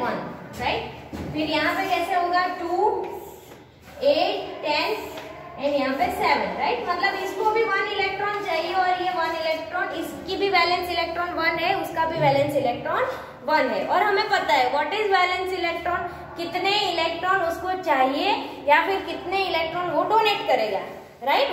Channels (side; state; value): both; identical; correlation 1.00